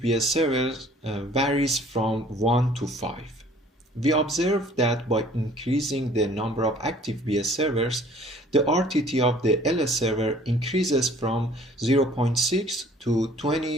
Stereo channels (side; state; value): both; normal; correlation 0.54